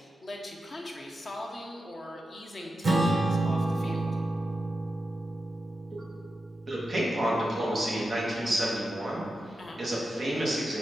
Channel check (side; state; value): both; normal; correlation 0.90